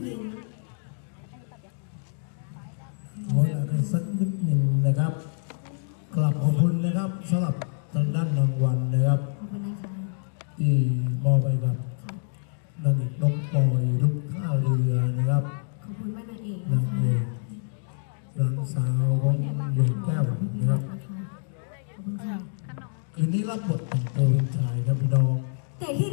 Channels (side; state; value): right; silent; digital silence